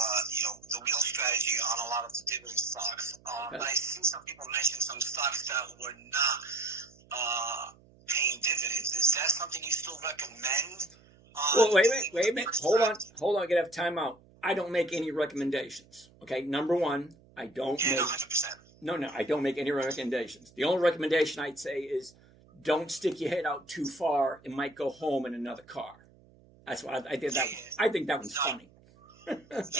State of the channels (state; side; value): noise; right; hum, 27 dB below the sound